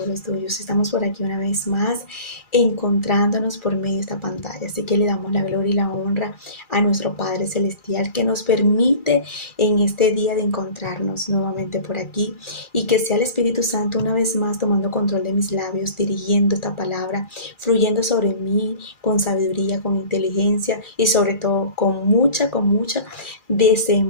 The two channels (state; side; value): late; right; 2.4 ms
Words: los tuyos. Estamos por aquí una vez más encontrándonos por medio de esta pantalla. Así que le damos la gloria y la honra a nuestro Padre Celestial que nos permite en este día de encontrarnos nuevamente por aquí y que sea el Espíritu Santo una vez más tomando control de mis labios, dirigiendo esta palabra, fluyendo sobre mí con sabiduría, con inteligencia y sobre todo con mucha